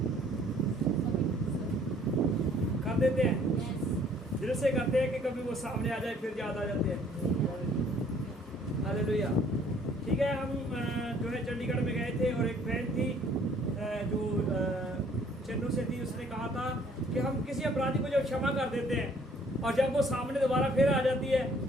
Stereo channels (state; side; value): normal; both; correlation 0.59